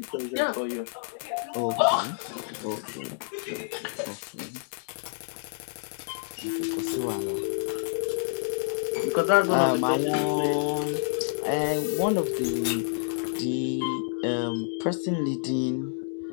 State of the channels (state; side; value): silent; right; digital silence